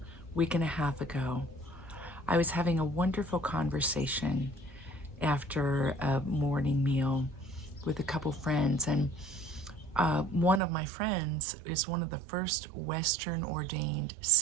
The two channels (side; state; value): left; drops out; at 10.6 s